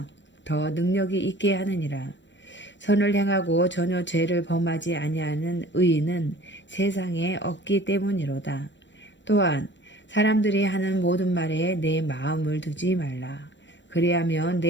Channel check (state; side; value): late; right; 0.53 ms